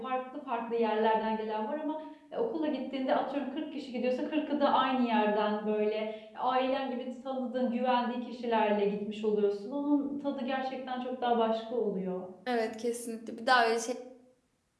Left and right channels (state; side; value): identical; both; correlation 1.00